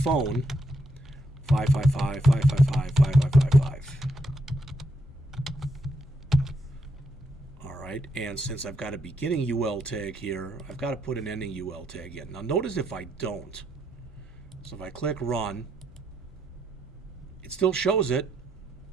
555-555-5555. All right, and since I've got a beginning UL tag here, I've got to put an ending UL tag in. Now notice if I don't, so if I click run, it still shows it,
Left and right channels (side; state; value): both; normal; correlation 0.78